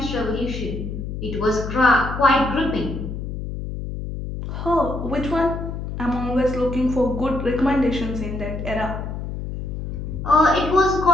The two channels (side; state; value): left; noise; hum, 6 dB below the sound